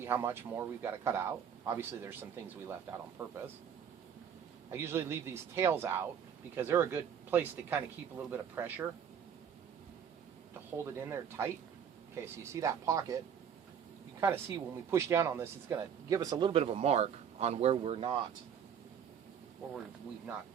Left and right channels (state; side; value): quieter; left; 8.0 dB